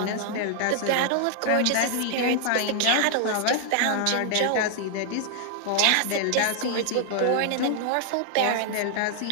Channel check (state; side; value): different; both; correlation 0.00